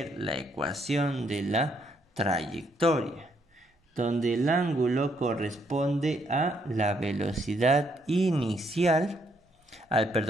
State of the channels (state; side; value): normal; both; correlation 0.72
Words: la ecuación de la trayectoria, donde el ángulo corresponde a la velocidad inicial,